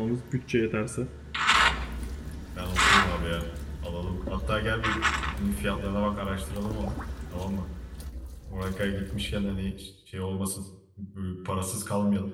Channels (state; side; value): identical; both; correlation 1.00